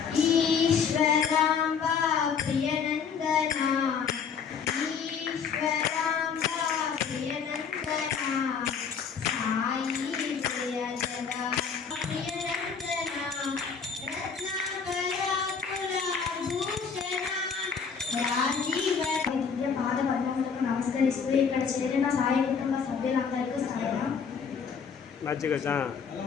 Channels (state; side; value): quieter; right; 6.3 dB